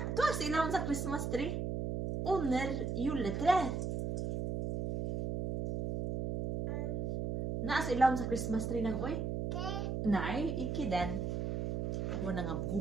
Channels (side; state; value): right; noise; hum, 2 dB below the sound